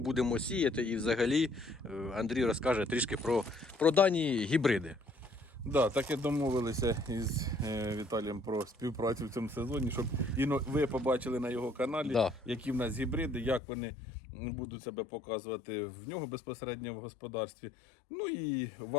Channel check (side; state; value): right; drops out; at 13.6 s